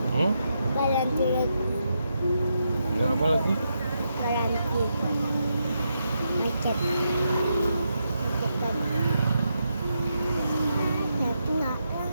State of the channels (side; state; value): both; inverted; correlation -0.82